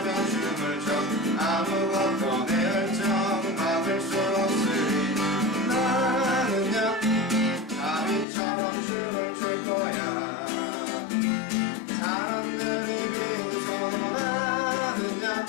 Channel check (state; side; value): drops out; right; at 8.2 s